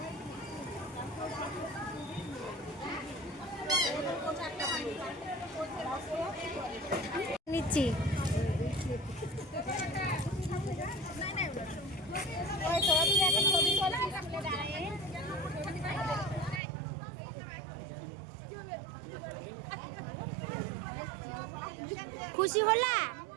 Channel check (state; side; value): drops out; left; at 16.6 s